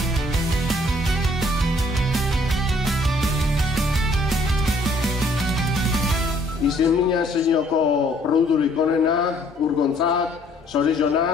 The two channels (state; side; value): normal; both; correlation 0.62